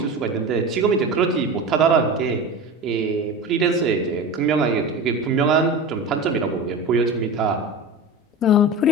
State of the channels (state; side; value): normal; both; correlation 0.29